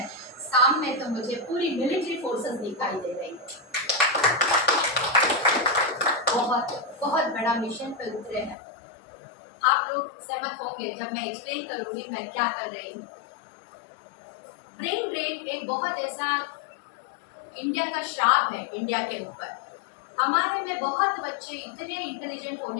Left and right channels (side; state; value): right; drops out; at 8.6 s